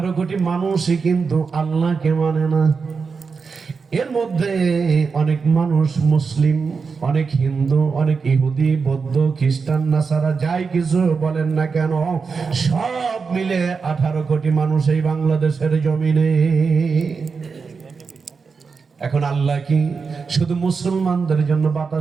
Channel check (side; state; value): left; quieter; 5.1 dB